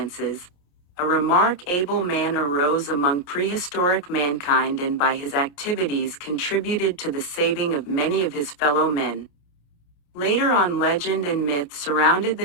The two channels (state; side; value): late; right; 28 ms